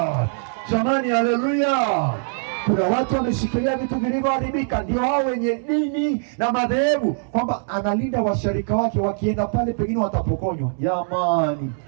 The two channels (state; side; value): silent; left; 64 dB below the other